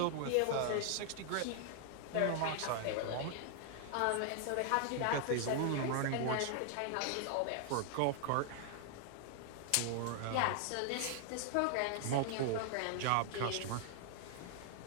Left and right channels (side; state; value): both; different; correlation 0.00